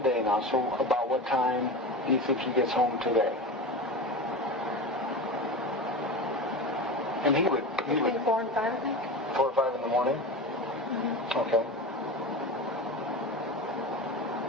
now. So about what time do you think he gets home today? And he would Between 4 and 5, I think. 4 or 5 in the morning? Mm-hmm. Okay.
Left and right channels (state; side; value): normal; both; correlation 0.27